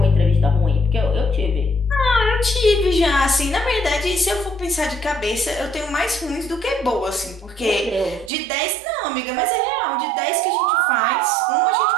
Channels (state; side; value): drops out; left; at 8.3 s